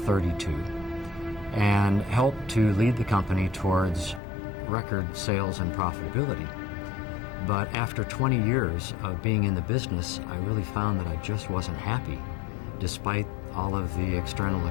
and helped to lead the company towards record sales and profitability. But after 20 years of being in the business, I really found that I just wasn't happy, despite all of the external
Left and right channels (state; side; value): drops out; right; at 4.2 s